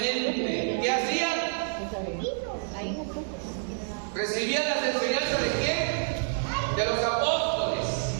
¿Qué hacía? Recibían las enseñanzas de quién? De los apóstoles.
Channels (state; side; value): silent; left; digital silence